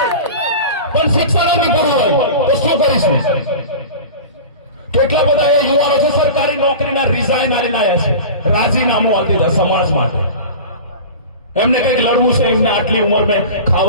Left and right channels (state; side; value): inverted; both; correlation -0.33